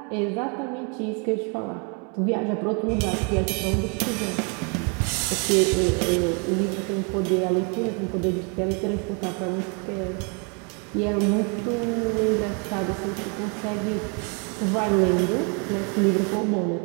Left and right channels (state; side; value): quieter; left; 36.2 dB